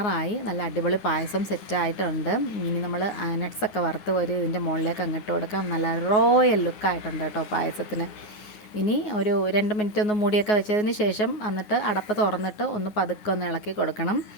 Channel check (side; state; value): right; late; 9.5 ms